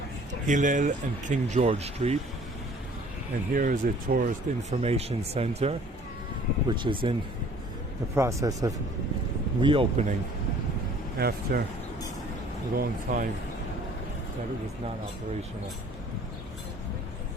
Hillel and King George Street, and here is a tourist information center which is in the process of reopening after a long time that it was not operational.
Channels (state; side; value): normal; both; correlation 0.53